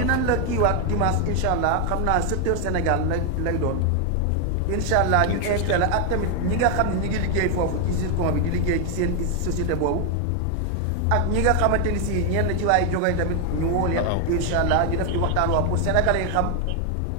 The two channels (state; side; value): different; both; correlation 0.01